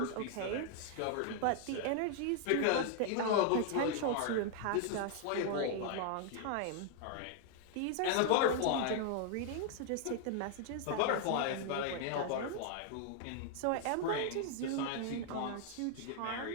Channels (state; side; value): different; both; correlation 0.00